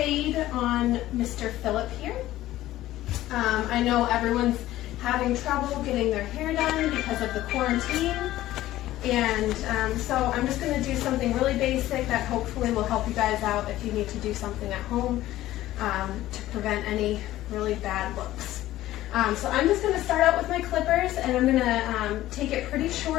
on Mr. Philip here. I know everyone's having trouble getting their hair done because of the quarantine, and so I'm just going to do something really basic that hopefully will help you guys out if you need to do something at home to prevent any really bad looks. So I'm just going to start out with my clippers, and I'm going to take it pretty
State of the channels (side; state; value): right; quieter; 15.0 dB